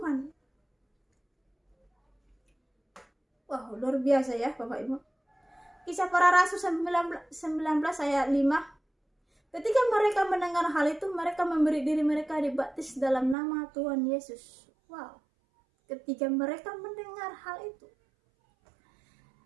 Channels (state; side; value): drops out; left; at 13.4 s